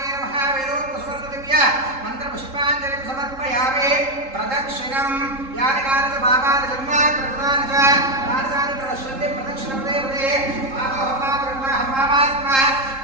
नमः वेदोक्तस्वर्णदिव्य मन्त्रपुष्पाञ्जलिं समर्पयामि प्रदक्षिणं यानि कानि पापानि जन्मानि कृतानि च तानि प्रणश्यन्ति प्रदक्षिणपदे पदे पापात्मा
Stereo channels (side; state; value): left; late; 3.7 ms